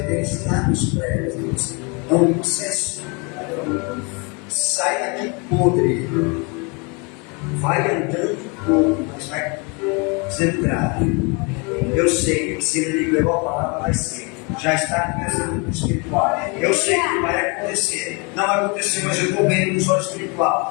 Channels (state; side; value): quieter; right; 31.4 dB